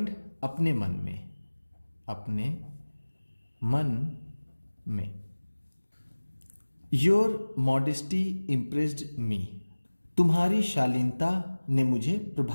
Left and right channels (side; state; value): both; inverted; correlation -1.00